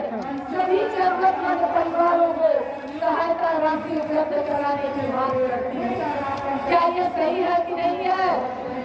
सभी जरूरतमंद परिवारों को सहायता राशि उपलब्ध कराने की मांग करती है। क्या ये सही है कि नहीं है?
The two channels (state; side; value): identical; both; correlation 1.00